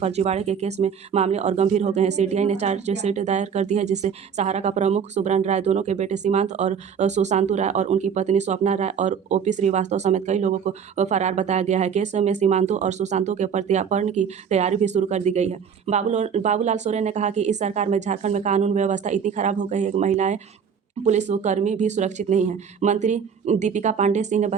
के केस में मामले और गंभीर हो गए हैं। सीबीआई ने चार्जशीट दायर कर दी है, जिससे सहारा का प्रमुख सुब्रन राय, दोनों के बेटे सीमांत और सुशांतु राय और उनकी पत्नी स्वप्ना राय और ओपी श्रीवास्तव समेत कई लोगों को फरार बताया गया है। केस में सीमांतु और सुशांतु के प्रत्यार्पण की तैयारी भी शुरू कर दी गई है। बाबूलाल सोरेन ने कहा कि इस सरकार में झारखंड में कानून व्यवस्था इतनी खराब हो गई है कि महिलाएं, पुलिसकर्मी भी सुरक्षित नहीं हैं। मंत्री दीपिका पांडे सिंह ने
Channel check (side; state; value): left; quieter; 7.1 dB